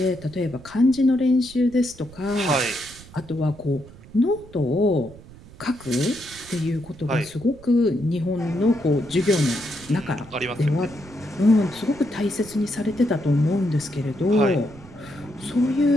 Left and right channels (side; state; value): right; noise; rumble, 20 dB below the sound